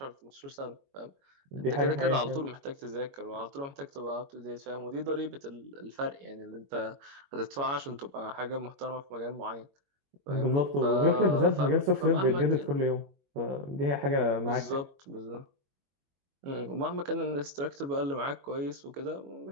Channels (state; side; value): late; left; 22 ms